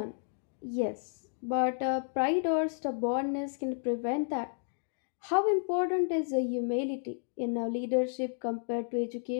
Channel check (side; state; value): right; silent; digital silence